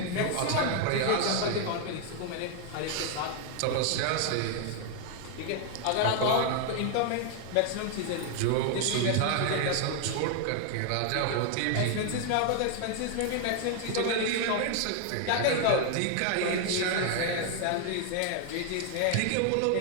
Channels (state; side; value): different; both; correlation 0.00